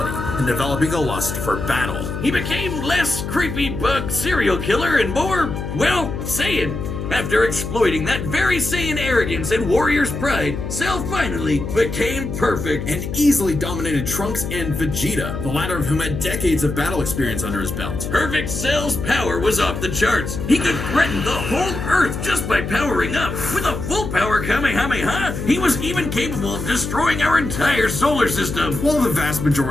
and developing a lust for battle. He became less creepy bug serial killer and more, well, Saiyan. After exploiting that very Saiyan arrogance and warrior's pride, Cell finally became perfect. And easily dominated Trunks and Vegeta, the latter of whom had decades of battle experience under his belt. Perfect Cell's power was off the charts. He could threaten the whole Earth just by powering up. With a full power Kamehameha, he was even capable of destroying our entire solar system. While the vast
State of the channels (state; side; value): noise; left; hum, 5 dB below the sound